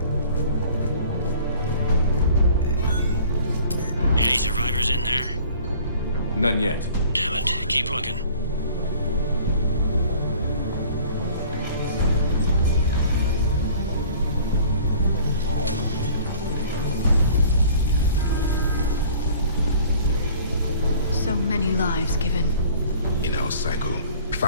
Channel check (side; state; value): both; inverted; correlation -0.50